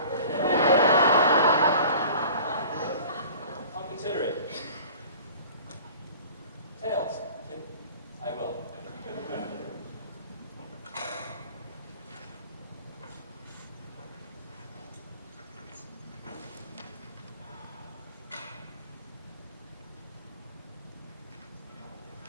I'll consider it. Tails. I will.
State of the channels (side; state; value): both; inverted; correlation -0.44